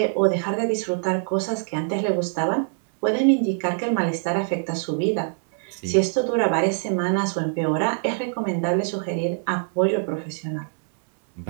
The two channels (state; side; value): silent; left; digital silence